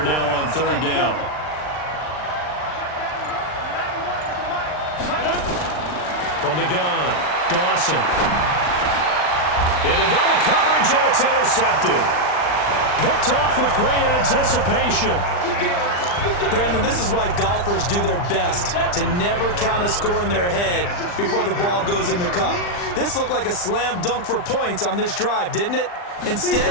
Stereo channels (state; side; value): late; right; 39 ms